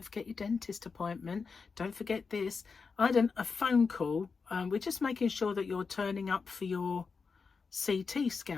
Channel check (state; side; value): quieter; right; 5.0 dB